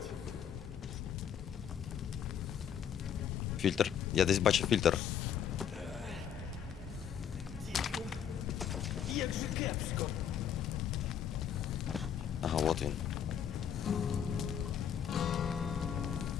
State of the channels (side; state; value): right; quieter; 8.7 dB